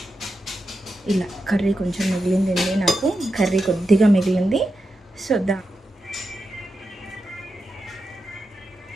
ఇలా కర్రీ కొంచెం మిగిలిందండి, నాకు కర్రీ కొద్దిగా మిగిలింది. సో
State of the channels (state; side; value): normal; both; correlation 0.88